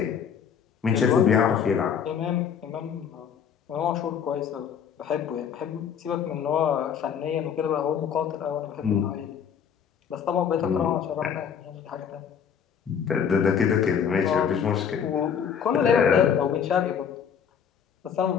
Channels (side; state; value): right; quieter; 7.7 dB